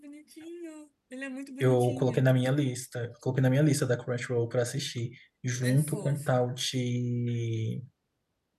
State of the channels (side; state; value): both; identical; correlation 1.00